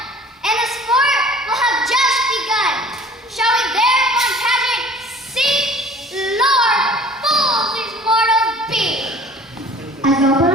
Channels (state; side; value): normal; both; correlation 0.48